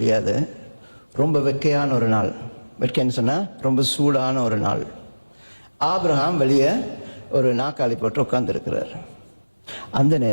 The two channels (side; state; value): both; inverted; correlation -1.00